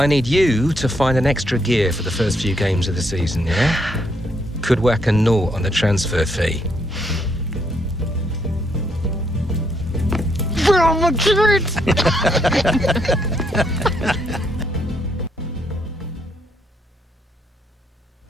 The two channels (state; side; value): normal; both; correlation 0.74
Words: need you to find an extra gear for the first few games of the season, yeah? Could whack a naught on the transfer fee. Real Madrid!